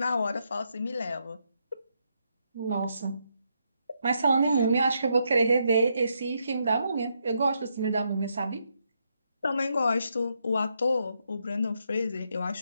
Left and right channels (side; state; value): both; inverted; correlation -0.79